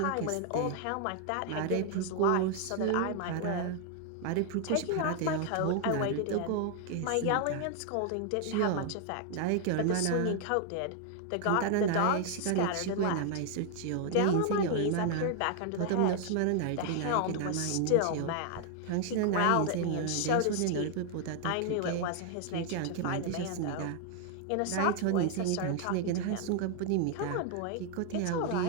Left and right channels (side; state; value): both; different; correlation 0.00